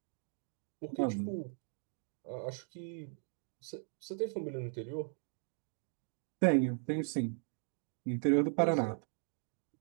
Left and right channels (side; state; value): left; silent; 52 dB below the other